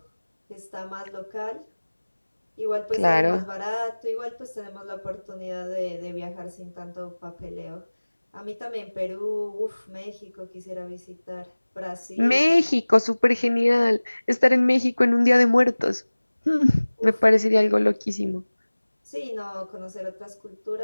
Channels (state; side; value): inverted; both; correlation -1.00